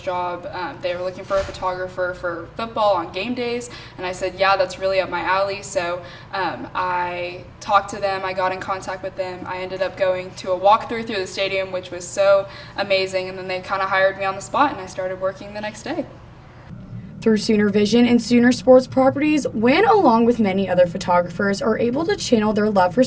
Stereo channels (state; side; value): identical; both; correlation 1.00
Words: They were looking for a photographer for football on game days. And I said, yeah, that's really up my alley. So I talked to them. I got in contact with them. I ended up going to a walkthrough through the stadium, which was so amazing. And then they kind of hired me on the spot, and I started working the next day. Through Sooner Vision and Sooner Sports Properties, Wynn, along with many other photographers, are able to channel their love for